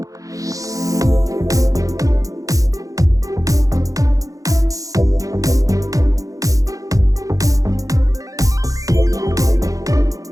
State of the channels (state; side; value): late; left; 0.17 ms